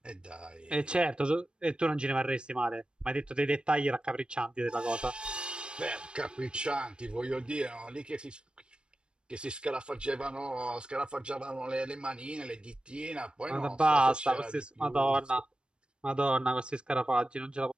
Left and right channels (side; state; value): left; late; 0.054 ms